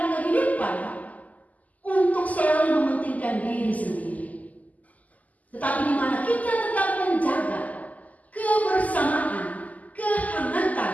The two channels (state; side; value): late; right; 0.077 ms